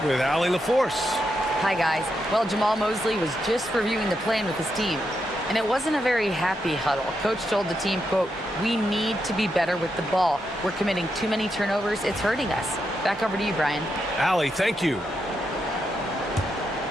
with Allie LaForce. Hi, guys. Well, Jamal Mosley was just reviewing the plan with his team, and it wasn't a very happy huddle. Coach told the team, quote, "We need to be better with the ball. We're committing too many turnovers. It's hurting us." Back over to you, Brian. Allie, thank you.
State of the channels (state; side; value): normal; both; correlation 0.83